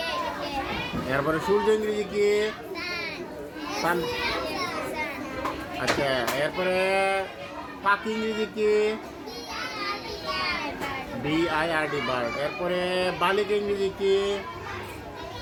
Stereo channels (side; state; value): both; identical; correlation 1.00